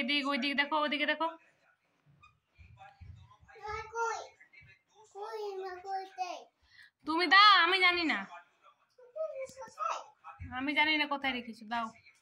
এদিক ওইদিক দেখো, ওদিকে দেখো। তুমি দাও, আমি জানি না। আমি জানি না কোথায় রেখেছো, দাও।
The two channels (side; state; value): both; identical; correlation 1.00